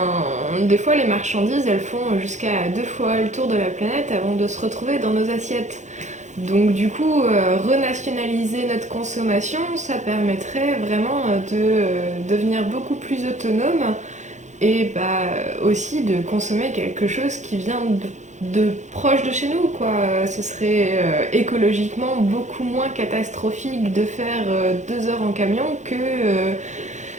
des fois, les marchandises, elles font jusqu'à 2 fois le tour de la planète avant de se retrouver dans nos assiettes. Donc du coup, renationaliser notre consommation, ça permettrait vraiment de devenir beaucoup plus autonome et aussi de consommer quelque chose qui vient de proche de chez nous, quoi. Ce serait écologiquement beaucoup moins catastrophique de faire 2 heures en camion que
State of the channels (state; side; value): late; left; 0.34 ms